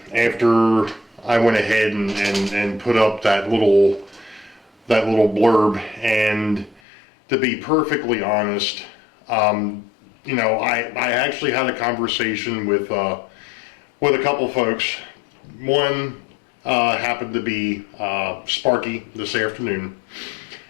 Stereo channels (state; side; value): drops out; right; at 6.8 s